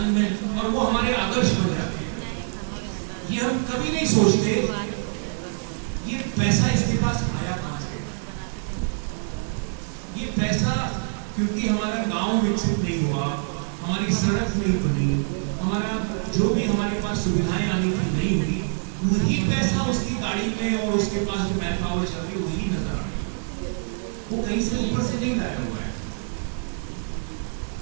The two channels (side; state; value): left; silent; 62 dB below the other